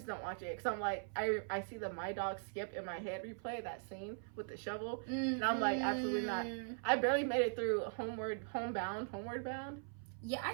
don't watch it because I'm like I see the My Dog Skip in my head replay that scene with the shovel, and I'm like absolutely not. I barely made it through Homeward Bound. Yeah,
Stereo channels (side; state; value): left; silent; 51 dB below the other